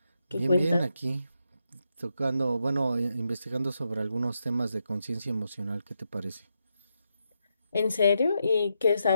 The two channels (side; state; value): both; inverted; correlation -0.84